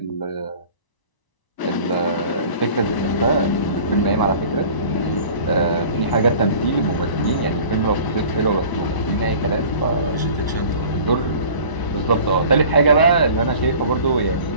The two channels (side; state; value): right; late; 1.0 ms